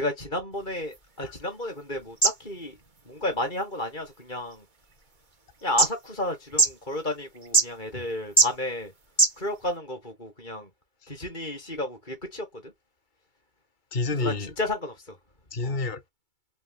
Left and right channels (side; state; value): right; late; 2.3 ms